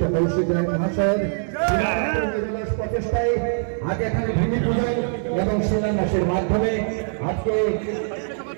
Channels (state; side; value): silent; left; 62 dB below the other